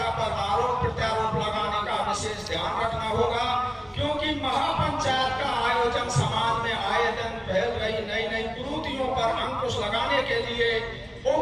पर आरोप प्रत्यारोप लगाने का विशेष ध्यान रखना होगा, क्योंकि महापंचायत का आयोजन समाज में आए दिन फैल रही नई नई कुरीतियों पर अंकुश लगाने के लिए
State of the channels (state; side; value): identical; both; correlation 1.00